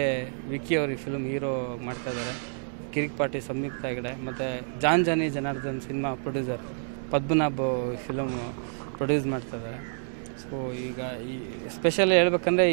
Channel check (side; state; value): left; silent; digital silence